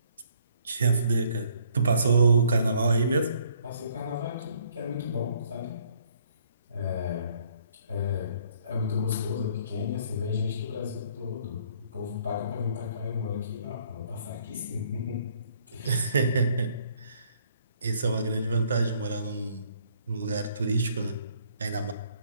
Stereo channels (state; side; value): inverted; both; correlation -0.63